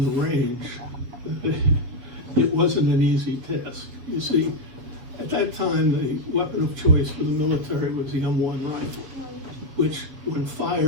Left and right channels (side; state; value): left; late; 7.9 ms